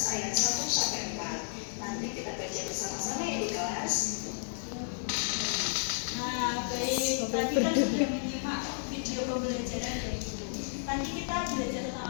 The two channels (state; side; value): silent; right; digital silence